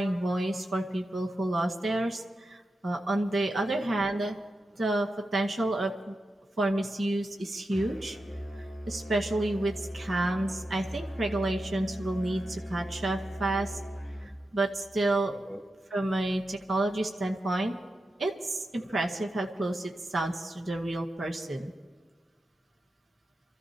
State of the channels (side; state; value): both; normal; correlation 0.90